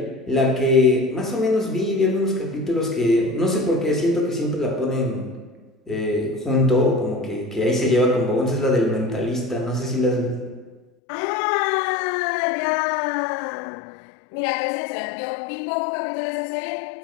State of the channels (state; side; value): drops out; right; at 10.8 s